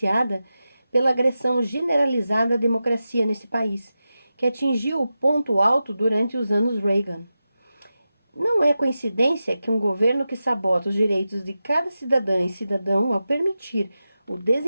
pela agressão generalizada à democracia nesse país, que atingiu o ponto alto durante os anos Reagan. Não é coincidência que um governo que sabota os direitos de cada cidadã e cidadão ao permitir o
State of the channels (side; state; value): both; inverted; correlation -0.92